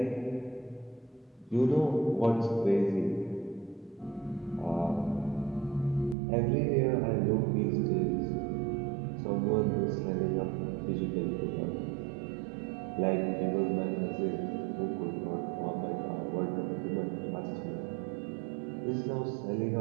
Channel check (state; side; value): drops out; left; at 6.2 s